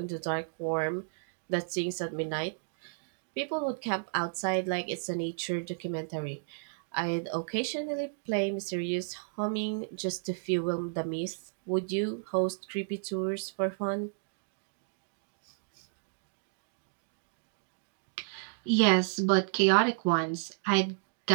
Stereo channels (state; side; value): silent; left; digital silence